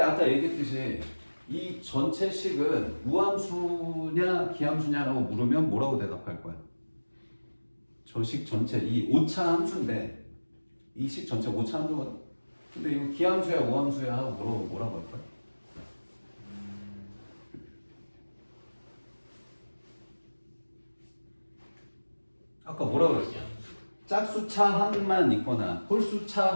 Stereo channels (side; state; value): both; inverted; correlation -1.00